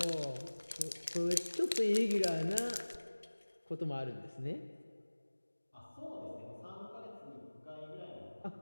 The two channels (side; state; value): both; inverted; correlation -1.00